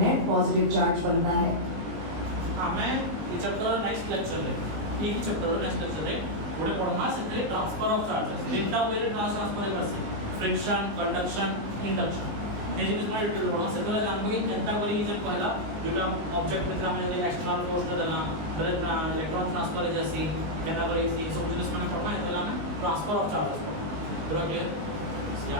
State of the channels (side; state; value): left; late; 19 ms